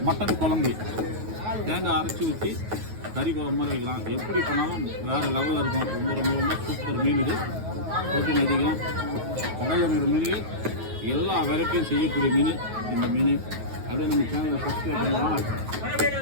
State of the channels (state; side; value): late; left; 9.3 ms